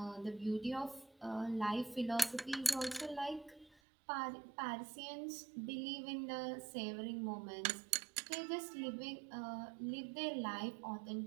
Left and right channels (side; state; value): left; drops out; at 3.8 s